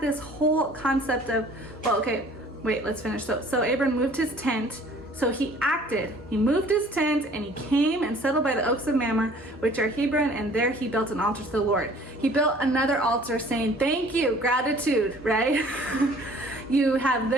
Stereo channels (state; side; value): normal; both; correlation 0.52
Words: whole concept of, well, okay, wait, let's finish. So Abram moved his tent. So he acted. He moved his tent, and he came and settled by the oaks of Mamre, which are Hebron, and there he built an altar to the Lord. He built another altar saying, thank you, gratitude, right? You have